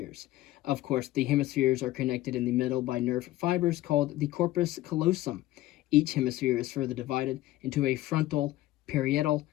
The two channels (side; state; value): right; quieter; 16.1 dB